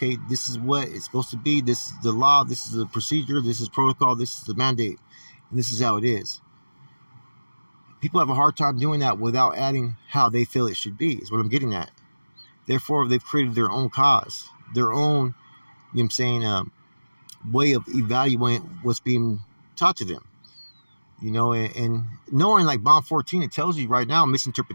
this is what it's supposed to be, this is the law, this is the procedure, this is protocol, this is the mandate, and this is how it is. People have a hard time doing that without adding how they feel it should be, is what I'm getting at. Therefore, they've created their own cause, their own, way of evaluating what's being taught to them. And knowing like bond 14, it tells you right now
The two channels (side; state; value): both; inverted; correlation -1.00